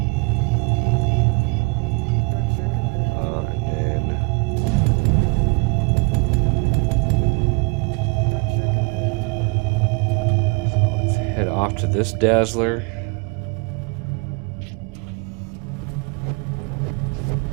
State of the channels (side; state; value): left; quieter; 30.9 dB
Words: Off to this dazzler.